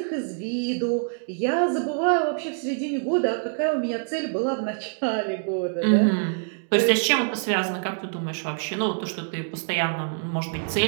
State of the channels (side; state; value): left; silent; 62 dB below the other